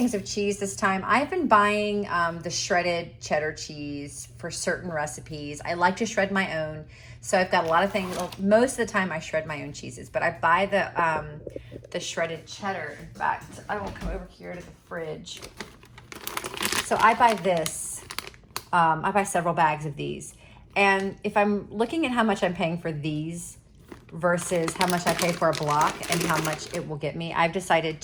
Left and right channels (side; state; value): both; identical; correlation 1.00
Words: of cheese this time. I've been buying the shredded cheddar cheese for certain recipes. I like to shred my own. So I've got a lot of things. Well, most of the time I shred my own cheeses, but I buy the shredded cheddar. In fact, I will come over here to the fridge. So I buy this. I buy several bags of these. And if I'm looking at how much I'm paying for these versus how much I pay for a block and how much it will get me, I've decided